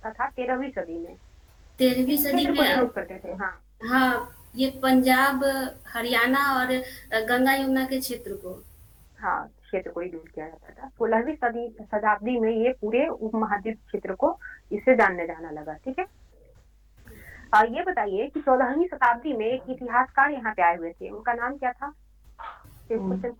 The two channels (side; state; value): both; identical; correlation 1.00